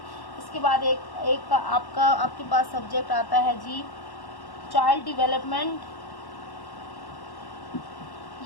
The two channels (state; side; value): late; right; 1.1 ms